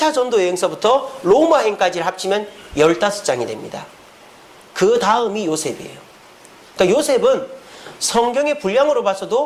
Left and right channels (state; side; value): identical; both; correlation 1.00